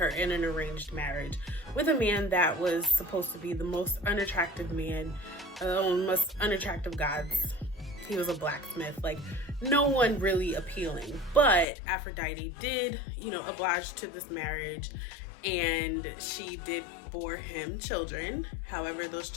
in an arranged marriage with a man that was supposed to be the most unattractive man, most unattractive gods. He was a blacksmith, like no one really appealing. But Aphrodite did, oblige to this marriage, and she did bore him children. However, those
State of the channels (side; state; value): right; drops out; at 11.7 s